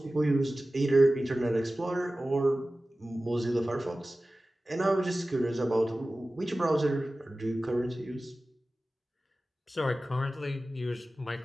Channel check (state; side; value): normal; both; correlation 0.96